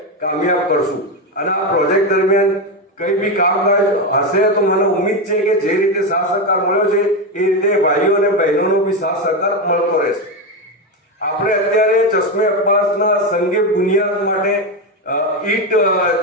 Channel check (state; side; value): normal; both; correlation 0.12